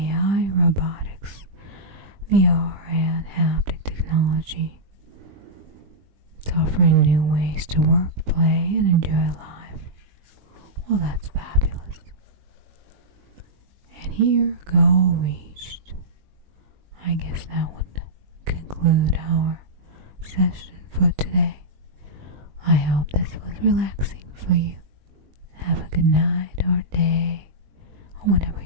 robotics, VR, and haptic technology. It's offering new ways to work, play, and enjoy life. Well, that's fabulous. And here, goal reached. I guess that would conclude our session for today. I hope this was relaxing for you. Have a good night or day, or whenever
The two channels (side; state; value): left; late; 20 ms